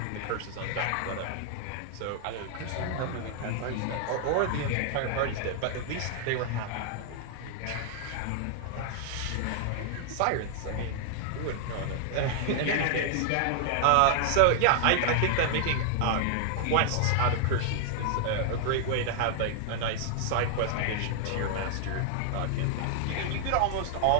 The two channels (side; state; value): both; different; correlation 0.00